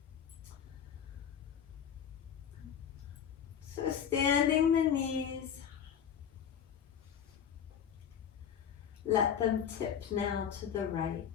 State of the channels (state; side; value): quieter; right; 8.4 dB